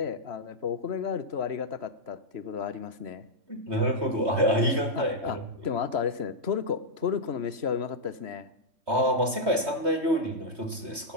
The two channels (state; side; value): late; left; 3.2 ms